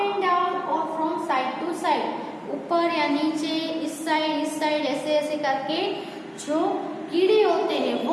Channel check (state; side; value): identical; both; correlation 1.00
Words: down और फ्रॉम साइड टू साइड, ऊपर या नीचे, इस साइड ऐसे ऐसे करके जो कीड़े होते हैं,